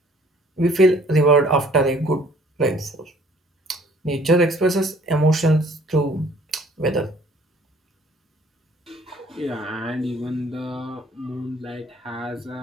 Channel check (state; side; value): normal; both; correlation 0.57